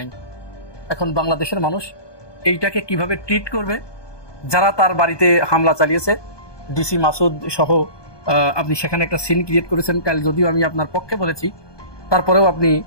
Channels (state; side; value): late; right; 1.2 ms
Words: এখন বাংলাদেশের মানুষ এইটাকে কিভাবে ট্রিট করবে? যারা তার বাড়িতে হামলা চালিয়েছে, ডিসি মাসুদ সহ আপনি সেখানে একটা সিন ক্রিয়েট করেছেন। কাল যদিও আমি আপনার পক্ষে বলেছি, তারপরেও আপনি